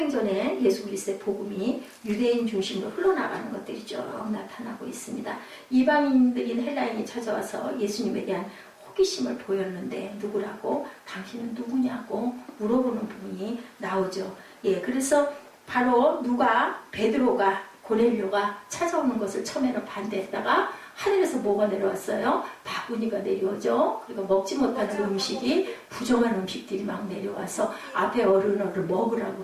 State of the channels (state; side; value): identical; both; correlation 1.00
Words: 예수 그리스도의 복음이 유대인 중심으로 흘러나가는 것들이 쭉 나타나고 있습니다. 이방인들인 헬라인이 찾아와서 예수님에 대한 호기심을 보였는데 누구라고? 당신은 누구냐고 물어보는 부분이 나오죠. 그래서 바로 베드로가 고넬료가 찾아오는 것을 처음에는 반대했다가 하늘에서 뭐가 내려왔어요? 바구니가 내려오죠. 그리고 먹지 못하는 음식이 부정한 음식들이 막 내려와서 앞에 어른어를 먹으라고